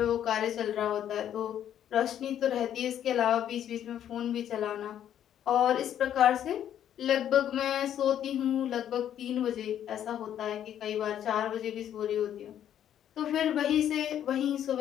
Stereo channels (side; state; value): right; quieter; 10.3 dB